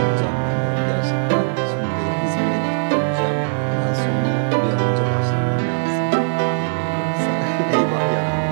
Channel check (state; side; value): silent; left; digital silence